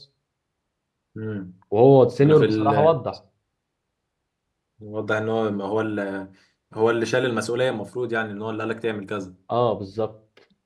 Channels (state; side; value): identical; both; correlation 1.00